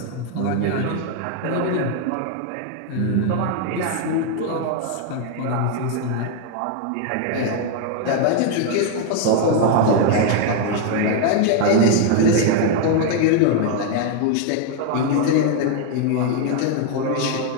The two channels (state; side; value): different; both; correlation 0.01